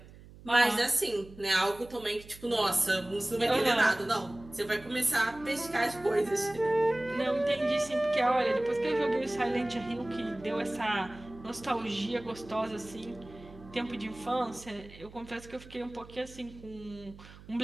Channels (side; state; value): right; noise; hum, 19 dB below the sound